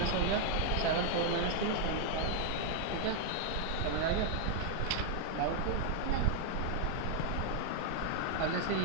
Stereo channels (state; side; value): different; both; correlation 0.00